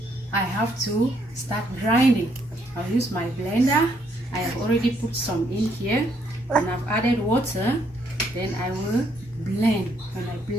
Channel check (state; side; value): normal; both; correlation 0.71